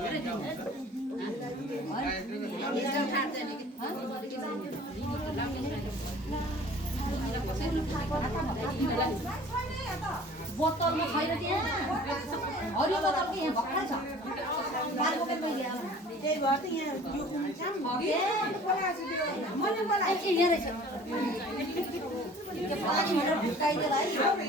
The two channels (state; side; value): normal; both; correlation 0.48